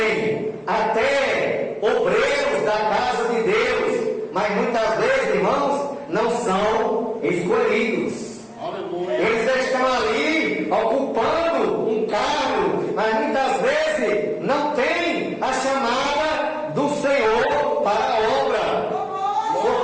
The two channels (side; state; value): both; identical; correlation 1.00